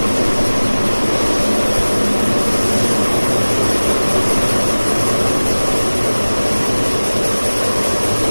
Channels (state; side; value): inverted; both; correlation -1.00